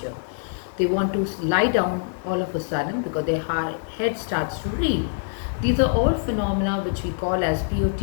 They want to lie down all of a sudden because their head starts to reel. These are all phenomena which we call as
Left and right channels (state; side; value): silent; right; digital silence